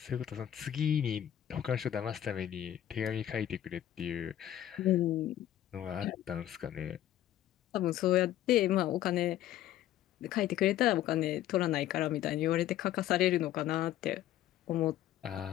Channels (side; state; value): right; quieter; 12.3 dB